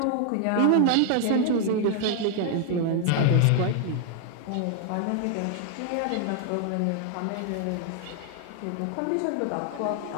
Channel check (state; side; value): different; both; correlation 0.00